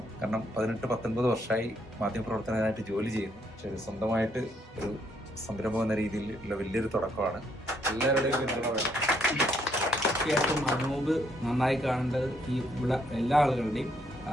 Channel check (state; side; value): normal; both; correlation 0.71